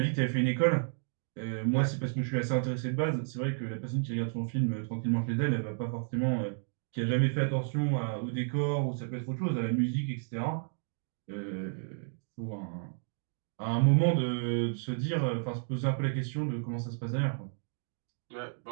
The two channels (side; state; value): left; silent; digital silence